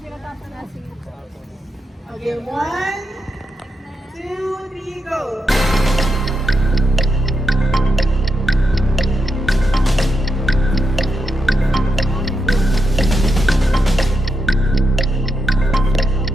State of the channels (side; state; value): both; normal; correlation 0.85